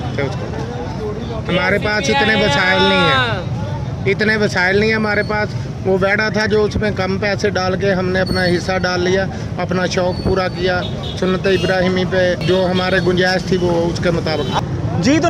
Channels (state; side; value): identical; both; correlation 1.00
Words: उसको। हमारे पास इतने वसाइल नहीं है, इतने वसाइल नहीं है हमारे पास। वो बैड़ा था जो उसमें कम पैसे डाल के हमने अपना हिस्सा डाल लिया, अपना शौक़ पूरा किया, सुन्नत इब्राहिमी पे जो हमारे गुंजाइश थी वो उसके मुताबिक। जी, तो